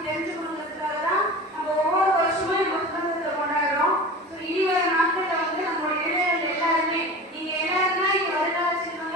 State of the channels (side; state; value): both; normal; correlation 0.34